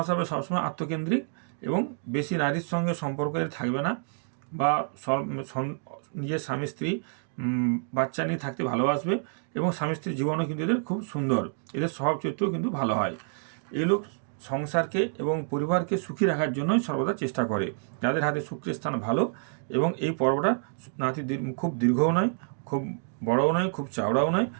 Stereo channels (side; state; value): left; silent; 59 dB below the other